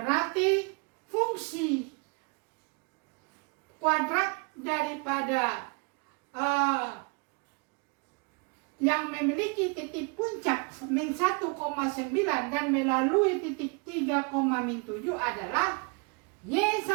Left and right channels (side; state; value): left; quieter; 33.2 dB